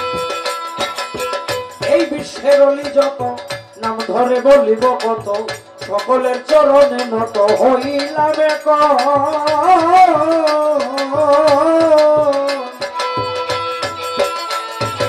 এই বিশ্বের অলি যত, নাম ধরে বলিব কত, সকলের চরণে নত হইলাম এক।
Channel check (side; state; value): both; identical; correlation 1.00